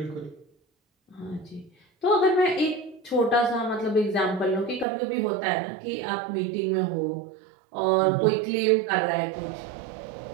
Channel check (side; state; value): left; drops out; at 4.9 s